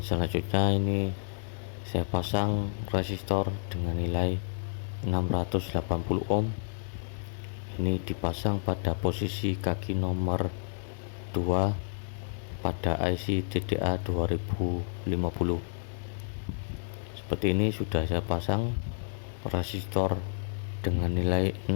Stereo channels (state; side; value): silent; right; 58 dB below the other